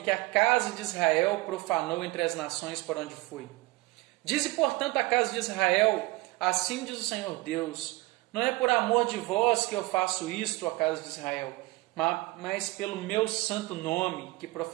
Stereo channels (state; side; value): quieter; left; 21.4 dB